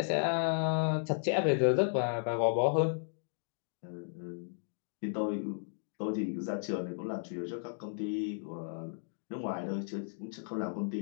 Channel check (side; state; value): right; silent; digital silence